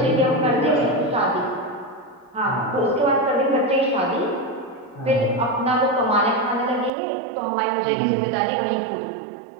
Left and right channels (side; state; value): left; drops out; at 6.9 s